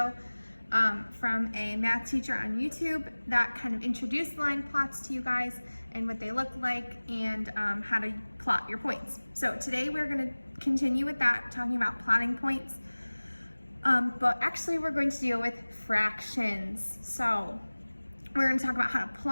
from a math teacher on YouTube that kind of introduced line plots to you guys and what they look like and how to plot your points. So today we're going to continue with that, talking about plotting points. But actually we're going to deal with fractions. So we're going to talk about how to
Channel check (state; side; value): inverted; both; correlation -1.00